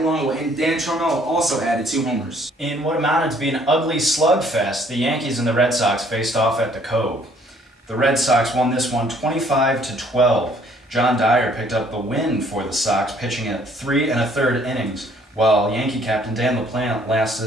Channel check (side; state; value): both; normal; correlation 0.61